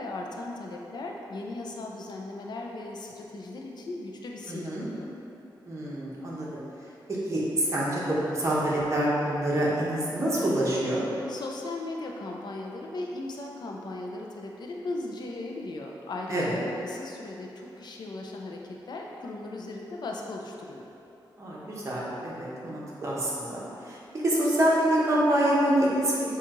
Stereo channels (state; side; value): normal; both; correlation 0.72